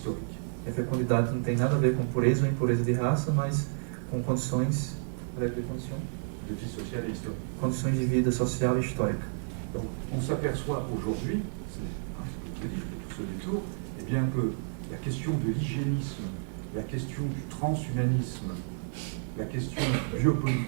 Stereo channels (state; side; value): silent; left; digital silence